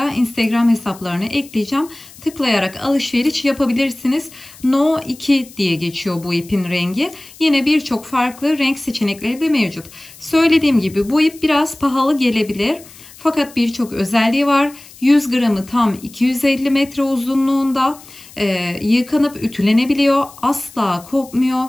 Instagram hesaplarını ekleyeceğim. Tıklayarak alışveriş yapabilirsiniz. No 2 diye geçiyor bu ipin rengi. Yine birçok farklı renk seçenekleri de mevcut. Söylediğim gibi bu ip biraz pahalı gelebilir. Fakat birçok özelliği var. 100 gramı tam 250 metre uzunluğunda. Yıkanıp ütülenebiliyor. Asla kopmuyor.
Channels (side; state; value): left; noise; hiss, 21 dB below the sound